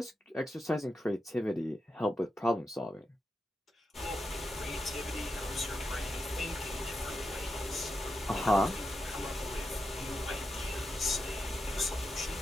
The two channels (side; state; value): both; normal; correlation 0.86